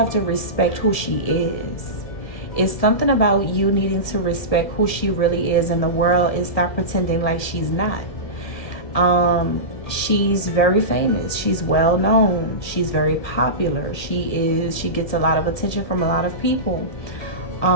to respect who she is. It's something about you needing to respect who she really is in the world and stop pretending like she's not. She's very famous. She's well known. She's very popular. She gets a lot of attention from a lot of people.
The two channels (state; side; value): late; right; 1.9 ms